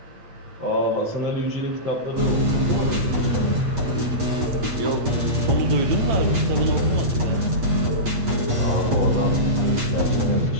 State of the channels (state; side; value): late; left; 8.3 ms